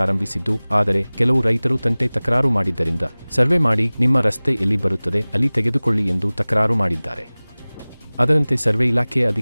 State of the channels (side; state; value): both; inverted; correlation -1.00